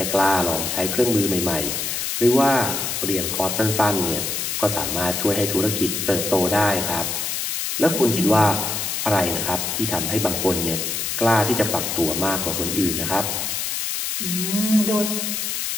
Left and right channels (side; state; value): left; noise; hiss, 2 dB below the sound